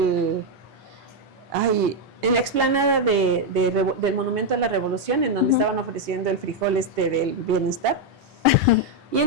la explanada del Monumento a la Revolución, en donde estaban ofreciendo el frijol del bienestar. Y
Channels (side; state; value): both; normal; correlation 0.01